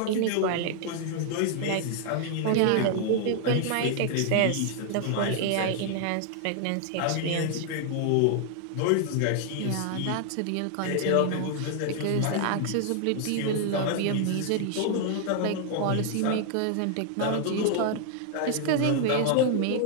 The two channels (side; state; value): both; different; correlation 0.00